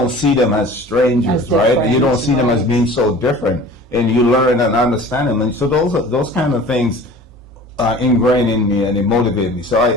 see them as strangers, right? You don't see them as being so different, and you learn and understand them. And so those kind of things are ingrained in me, and they motivate me. So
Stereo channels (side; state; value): both; normal; correlation 0.43